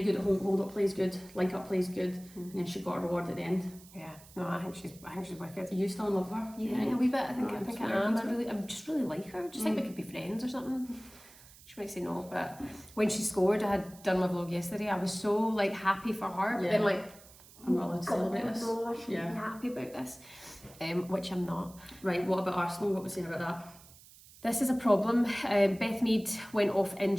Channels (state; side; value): noise; right; hiss, 22 dB below the sound